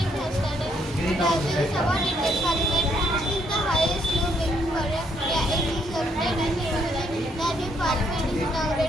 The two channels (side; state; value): both; normal; correlation 0.72